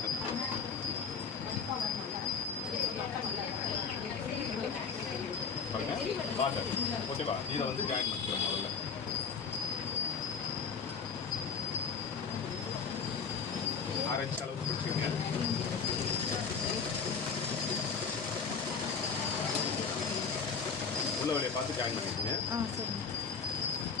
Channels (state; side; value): quieter; right; 5.8 dB